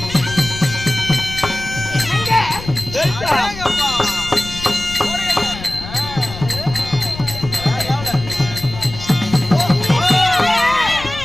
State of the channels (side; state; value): left; noise; rumble, 12 dB below the sound